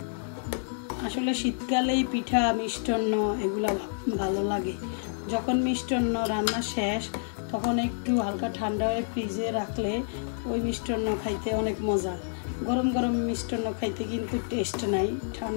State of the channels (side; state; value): right; silent; digital silence